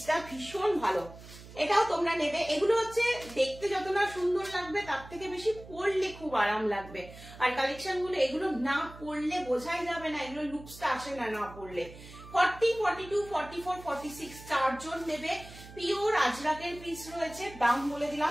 ভীষণ ভালো, এটাও তোমরা নেবে। এগুলো হচ্ছে দেখতে যত না সুন্দর লাগবে তার থেকে বেশি পরলে খুব আরাম লাগবে। আর কালেকশন গুলো এগুলো না পরলে বোঝাই যাবে না, এগুলো লুকসটা আসে না না পরলে। 40-42-44-46 চারজন নেবে, পিওর আজরাকের পিস রয়েছে। দাম বলে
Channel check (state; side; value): noise; right; hum, 17 dB below the sound